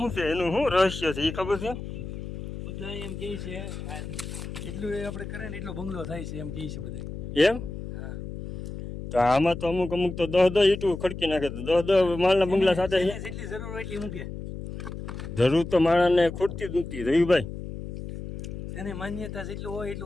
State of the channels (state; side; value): noise; left; hum, 8 dB below the sound